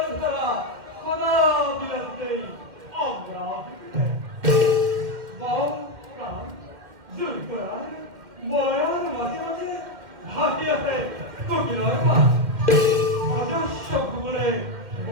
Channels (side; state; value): left; late; 2.2 ms